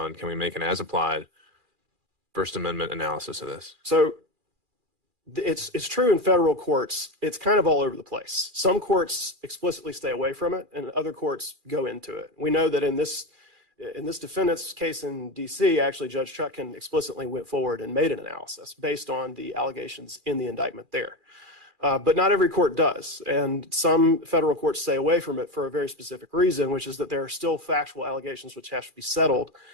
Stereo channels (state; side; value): late; left; 2.4 ms